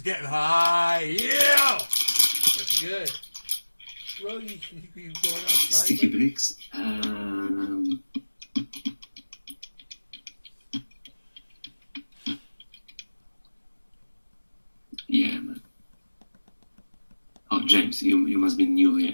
getting high. Yeah! That's good. Bro, you going outside? Sticky bricks. Yeah, man. Oh, James, you must be new here.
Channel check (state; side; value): inverted; both; correlation -1.00